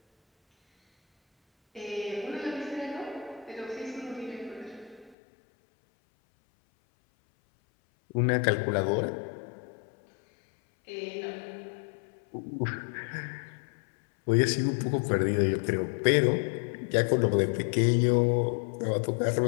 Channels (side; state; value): right; drops out; at 5.2 s